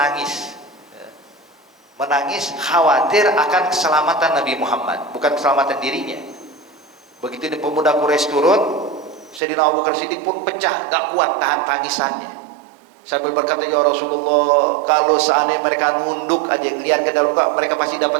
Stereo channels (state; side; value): drops out; left; at 9.4 s